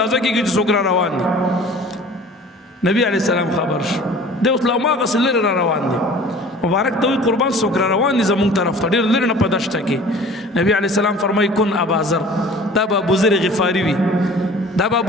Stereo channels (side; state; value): both; normal; correlation 0.45